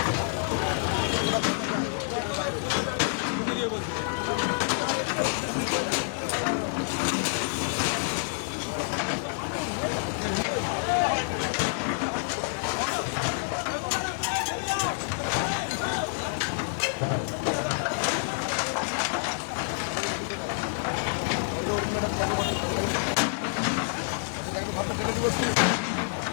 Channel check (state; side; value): silent; right; 59 dB below the other